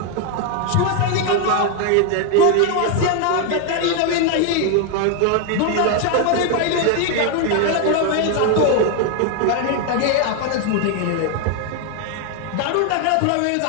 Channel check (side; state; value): both; different; correlation 0.01